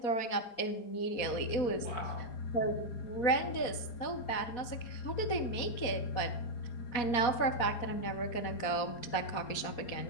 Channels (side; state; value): right; late; 4.2 ms